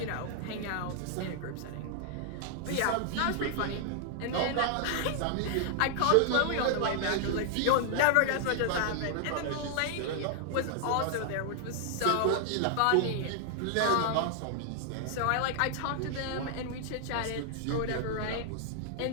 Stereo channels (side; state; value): both; different; correlation 0.00